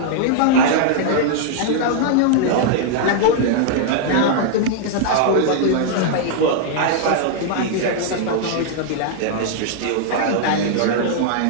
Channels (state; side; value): different; both; correlation -0.01